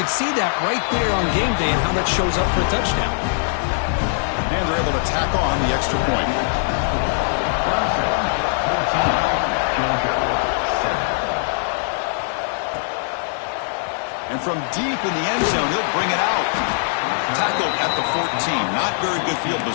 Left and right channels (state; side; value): silent; right; digital silence